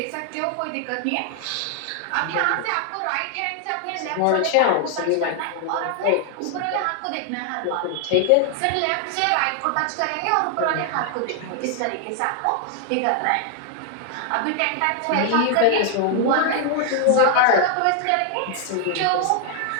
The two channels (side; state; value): both; different; correlation 0.00